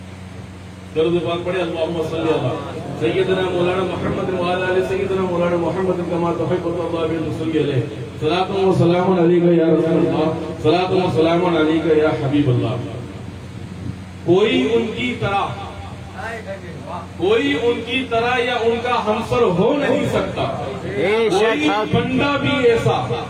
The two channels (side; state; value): both; identical; correlation 1.00